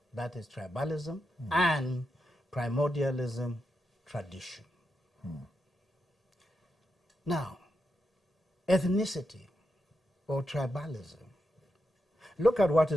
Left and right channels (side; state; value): both; normal; correlation 0.86